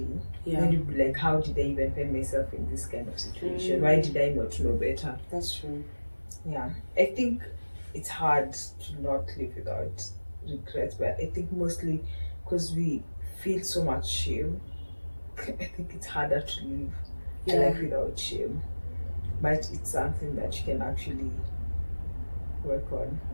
Then you'd be like, how did I even find myself in this kind of situation? Why did I not know better? That's true. Yeah. I think it's hard to not live without regret, but I think mostly because we feel so much shame, I think it's harder to live a life without shame. But it's something that you can actually work on.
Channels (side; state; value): both; inverted; correlation -1.00